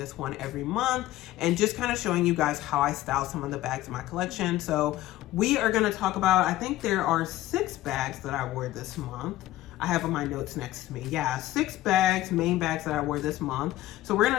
one every month and just kind of showing you guys how I style some of the bags in my collection. So we are going to talk about, I think there are 6 bags that I wore this month. I have on my notes next to me. Yeah, 6 bags, main bags that I wore this month. So we're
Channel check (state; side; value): quieter; right; 15.4 dB